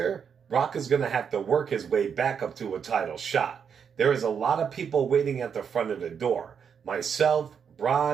Brock is going to have to work his way back up to a title shot. There is a lot of people waiting at the front of the door. Myself,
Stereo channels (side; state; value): left; quieter; 7.1 dB